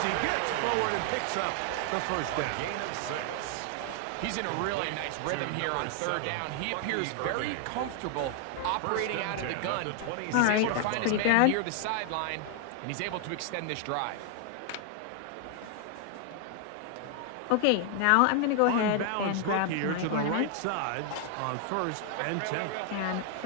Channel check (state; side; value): different; both; correlation 0.00